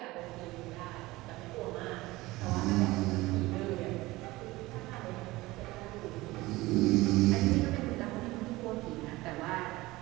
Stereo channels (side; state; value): left; quieter; 19.7 dB